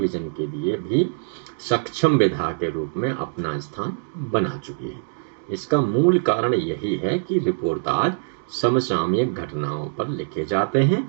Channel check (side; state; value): left; silent; digital silence